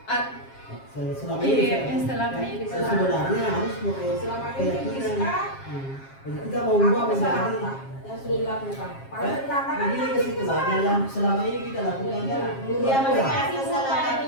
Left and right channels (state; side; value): late; right; 7.4 ms